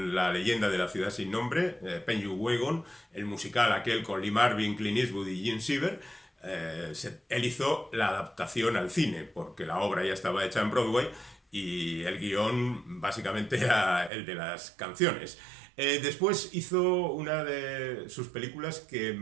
La leyenda de la ciudad sin nombre, Penguin, el musical aquel con Lee Marvin, Clint Eastwood y Gene Siever. Él hizo la adaptación al cine, porque la obra ya estaba hecha en Broadway y el guión básicamente era el de las canciones. Después hizo una de sus películas que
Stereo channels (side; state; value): left; drops out; at 14.1 s